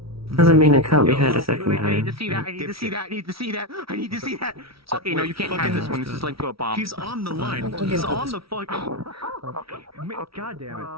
Doesn't mean it can't be had a second I need time. to see that. I need to see that. I need to see that. I need to see that. Okay, no, you can't have this one. This is linked to a bomb. He's on the line. Okay. He's on the fucking. God damn it.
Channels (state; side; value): late; left; 0.75 ms